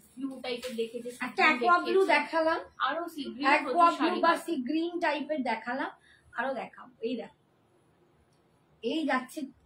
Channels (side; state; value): both; identical; correlation 1.00